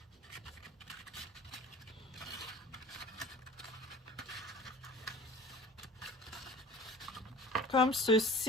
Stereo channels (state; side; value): normal; both; correlation 0.43